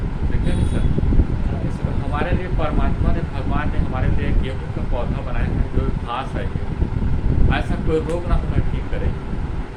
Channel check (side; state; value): both; identical; correlation 1.00